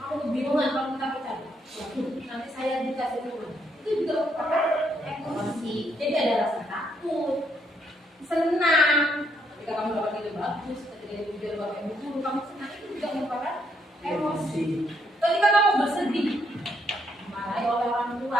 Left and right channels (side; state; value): both; normal; correlation 0.74